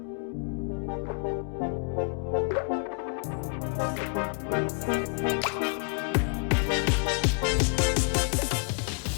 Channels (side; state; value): right; quieter; 39.4 dB